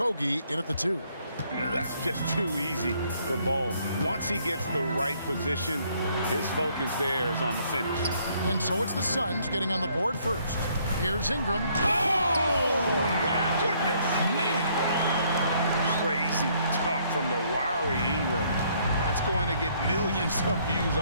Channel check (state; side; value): inverted; both; correlation -0.66